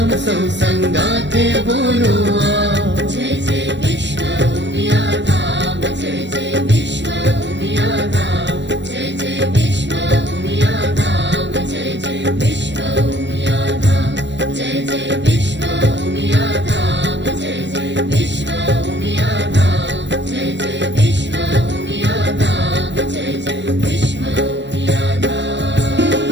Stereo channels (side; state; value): left; late; 0.52 ms